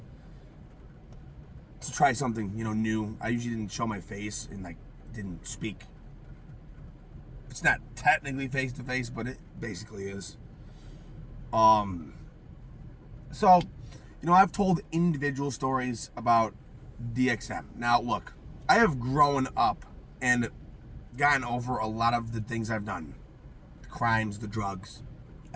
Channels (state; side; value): identical; both; correlation 1.00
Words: to try something, new. I usually didn't show my face and, didn't speak. It's not technically face to face, but it basically is. So, I've told individual stories about DXM. Now, look, I have grown up and gotten over a lot of the things I've done. The crimes, the drugs,